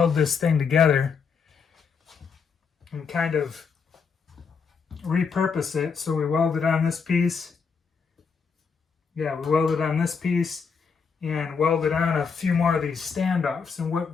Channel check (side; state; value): right; quieter; 5.8 dB